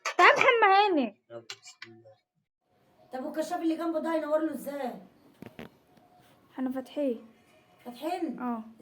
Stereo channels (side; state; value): both; identical; correlation 1.00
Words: تعال محمد هاني. طب والكشاف اللي جنبه ده ينور له ازاي؟ احنا فاتحين. فاتحين؟ اه.